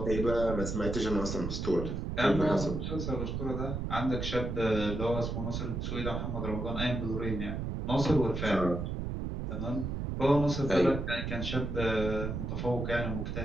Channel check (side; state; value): right; noise; rumble, 3 dB below the sound